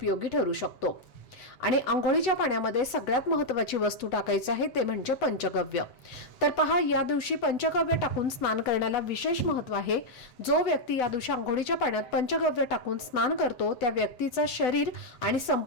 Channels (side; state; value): right; late; 8.0 ms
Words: ठरू शकतो. आणि अंघोळीच्या पाण्यामध्ये सगळ्यात महत्त्वाची वस्तू टाकायची आहे ते म्हणजे पंचगव्य. तर पहा, या दिवशी पंचगव्य टाकून स्नान करण्याला विशेष महत्त्व आहे. जो व्यक्ती या दिवशी अंघोळीच्या पाण्यात पंचगव्य टाकून स्नान करतो त्या व्यक्तीचं शरीर आणि